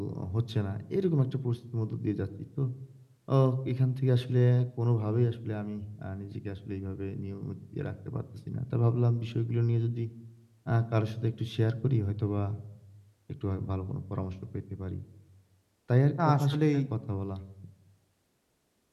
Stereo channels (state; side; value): identical; both; correlation 1.00